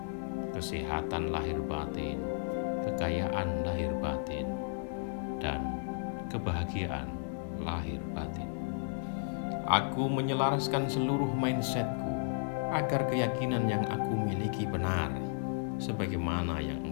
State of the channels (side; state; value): right; silent; digital silence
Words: Kesehatan lahir batin, kekayaan lahir batin, dan kebahagiaan lahir batin. Aku menyelaraskan seluruh mindsetku agar keyakinan yang aku miliki benar, sebagaimana yang